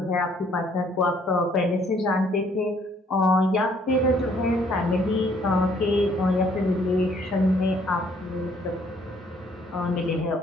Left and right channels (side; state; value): both; normal; correlation 0.63